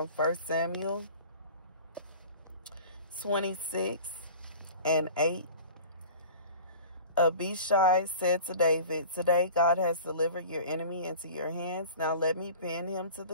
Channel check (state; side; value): inverted; both; correlation -0.41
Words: 1 Samuel 26:8. Abishai said to David, "Today God has delivered your enemy into your hands. Now let me pin him to